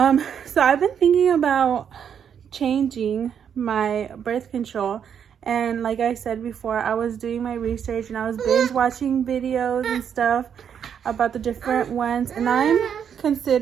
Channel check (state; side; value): quieter; left; 8.1 dB